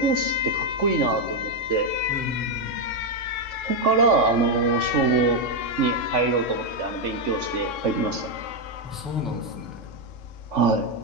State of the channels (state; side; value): normal; both; correlation 0.03